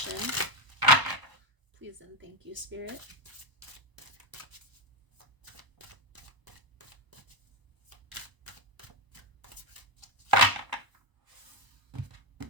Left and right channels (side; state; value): left; late; 1.0 ms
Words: Please and thank you, Spirit.